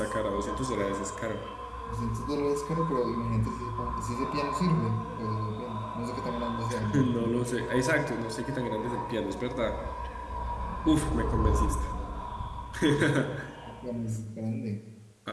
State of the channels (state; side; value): identical; both; correlation 1.00